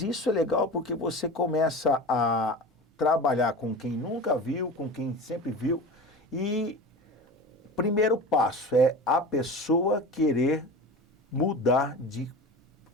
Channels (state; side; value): normal; both; correlation 0.32